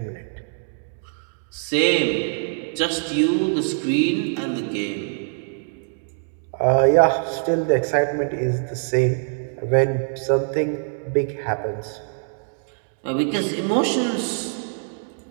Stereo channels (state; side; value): silent; left; digital silence